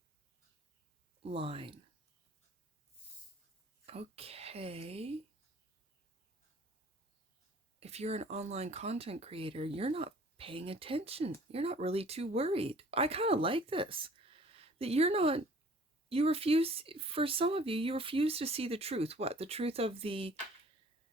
line. Okay. If you're an online content creator, you're not paying attention. You're not really too worried. I kind of like this. That you refuse, for some of you refuse to see the truth. What? The truth of the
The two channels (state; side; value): normal; both; correlation 0.52